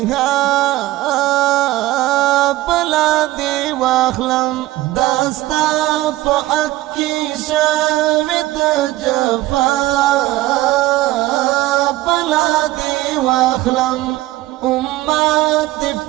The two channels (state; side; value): quieter; left; 17.1 dB